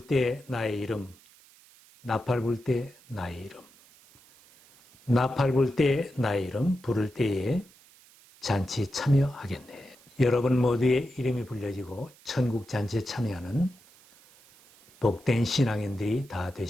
때 나의 이름, 나팔 불 때 나의 이름, 나팔 불 때 나의 이름 부를 때에 잔치 참여하겠네. 여러분 모두의 이름이 불려지고 천국 잔치에 참여하는 복된 신앙인들이 다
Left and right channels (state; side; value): noise; right; hiss, 26 dB below the sound